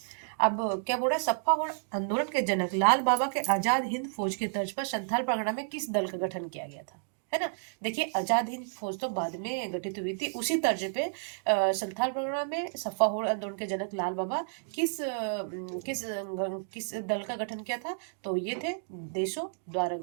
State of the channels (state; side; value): silent; left; digital silence